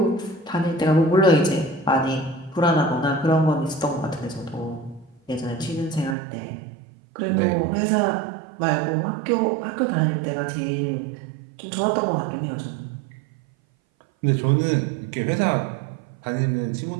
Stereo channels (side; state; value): left; drops out; at 6.2 s